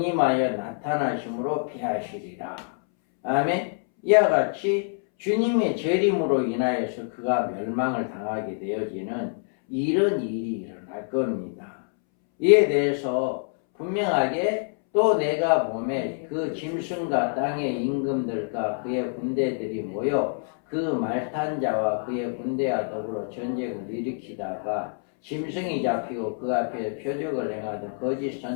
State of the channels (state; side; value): silent; right; 61 dB below the other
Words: 나타나심으로 피하시리라. 아멘. 이와 같이 주님의 재림으로 인하여서 그가 멸망을 당하게 되어지는 이런 일이 일어날 겁니다. 이에 대해서 분명하게 또 내가 보매 그 짐승과 땅의 임금들과 그의 군대들이 모여 그 말탄 자와 그의 군대와 더불어 전쟁을 일으키다가 짐승이 잡히고 그 앞에 표적을 행하던 거짓